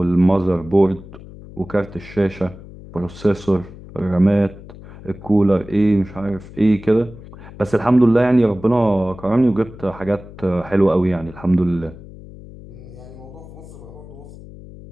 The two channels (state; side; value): noise; left; hum, 17 dB below the sound